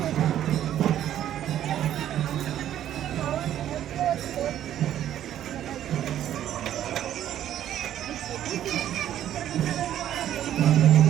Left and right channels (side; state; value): left; quieter; 11.3 dB